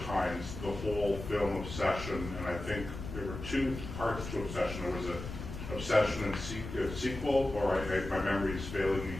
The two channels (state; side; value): noise; left; rumble, 9 dB below the sound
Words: times the whole film Obsession, and I think there were two parts to Obsession. There was an Obsession and sequel, or my memory is failing me